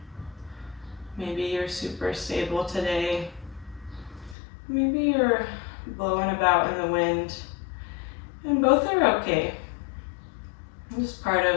Maybe you're super stable today. Maybe you're blowing about in the wind. And both are okay. Just part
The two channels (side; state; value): right; drops out; at 4.4 s